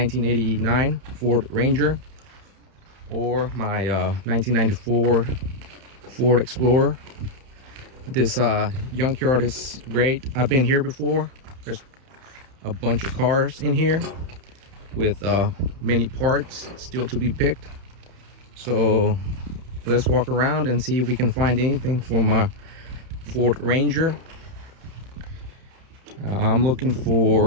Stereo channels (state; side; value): late; left; 31 ms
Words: Ford Ranger or my 1994 Ford Explorer. This Yunk yard is great. I've been here before. There's a bunch of cars in here with many parts still to be picked. So let's walk around and see if we can find anything for my Ford Ranger. I'm looking